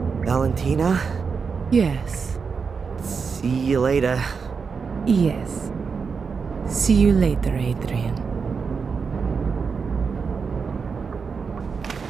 Valentina? Yes. See you later. Yes. See you later, Adrian.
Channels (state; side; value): quieter; left; 5.5 dB